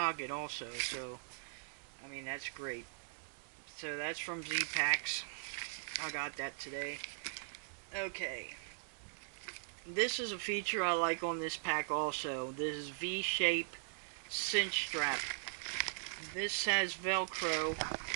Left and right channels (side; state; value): left; silent; digital silence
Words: also, so I mean, that's great. So that's from Z-Packs. I got that today. Okay, this is a feature I like on this pack also. This is V-shape cinch strap. This has Velcro.